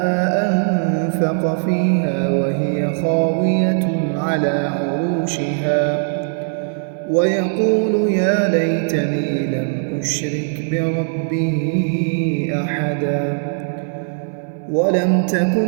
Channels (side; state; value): left; silent; 66 dB below the other